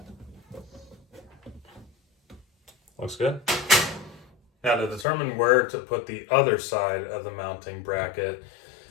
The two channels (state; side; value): drops out; right; at 5.1 s